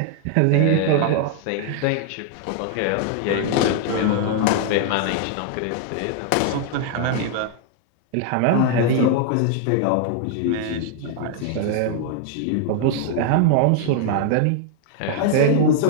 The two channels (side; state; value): both; different; correlation 0.00